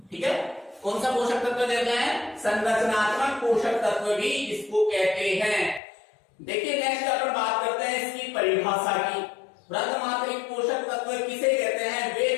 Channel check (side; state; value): right; drops out; at 5.8 s